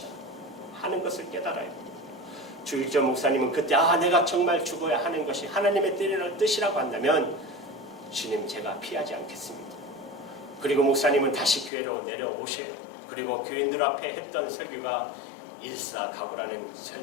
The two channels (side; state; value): right; drops out; at 11.7 s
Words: 하는 것을 깨달아요. 주일전 목사님은 그때 내가 정말 죽어야 하는 것이 하나님의 뜻이라고 한다면 주님 제가 피하지 않겠습니다. 그리고 목사님은 다시 교회로 내려오셔요. 그리고 교인들 앞에 했던 설교가 일사각오라는